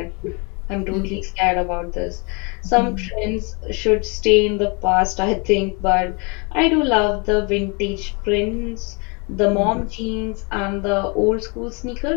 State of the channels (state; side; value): quieter; right; 31.8 dB